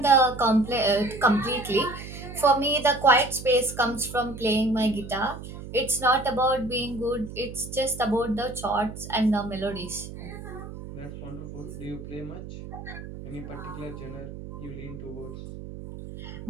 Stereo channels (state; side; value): noise; right; hum, 11 dB below the sound